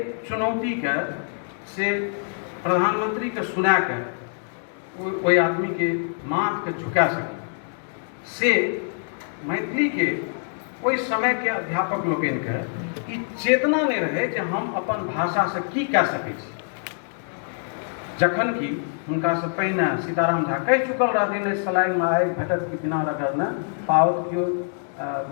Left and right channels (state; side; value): silent; right; 62 dB below the other